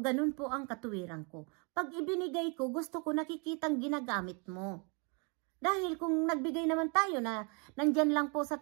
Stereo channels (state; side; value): quieter; left; 34.0 dB